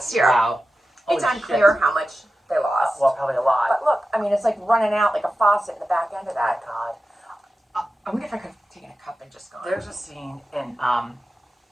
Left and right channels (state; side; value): normal; both; correlation 0.93